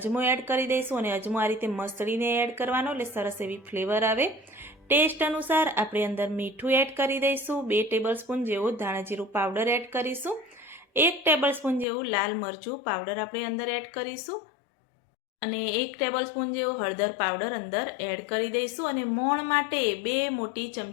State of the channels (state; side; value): drops out; right; at 11.9 s